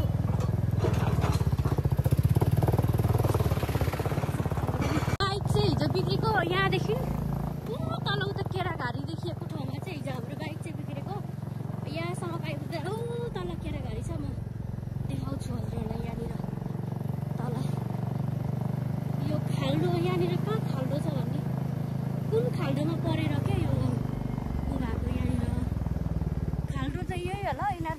बिग्रेको यहाँदेखि तल उता केराघारी देखिएको ठाउँमा चाहिँ हिजो हाम्रो बाइक चाहिँ बिग्रेको यहाँसम्म आइपुग्दा तल केराघारी छ म देखाउँछु हजुरहरूलाई यहाँनिर तल यो खाल्डो यहाँनिर कहाँ खाल्डो छ भन्ने कुन खाल्डोमा परेर क्या यो भएको यहाँनिर खाल्डो चाहिँ यही होला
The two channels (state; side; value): identical; both; correlation 1.00